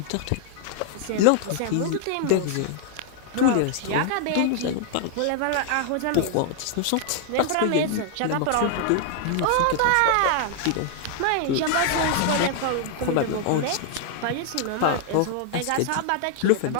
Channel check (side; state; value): both; different; correlation 0.00